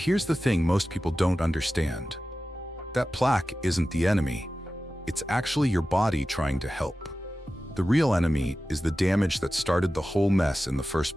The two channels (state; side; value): normal; both; correlation 0.94